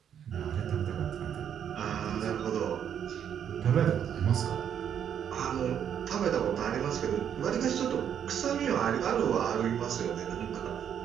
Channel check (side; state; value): left; quieter; 8.8 dB